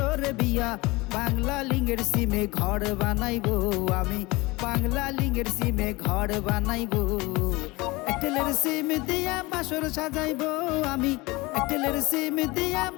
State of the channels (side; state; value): right; quieter; 22.9 dB